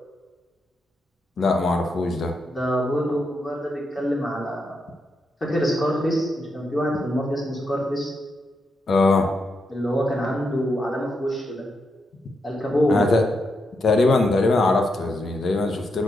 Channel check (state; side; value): normal; both; correlation 0.83